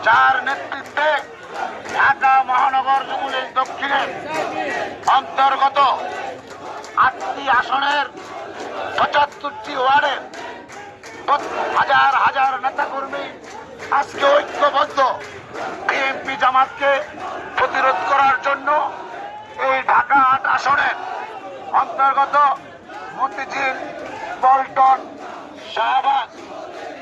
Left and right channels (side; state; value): both; identical; correlation 1.00